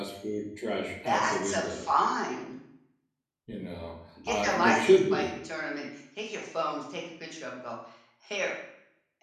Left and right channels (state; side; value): identical; both; correlation 1.00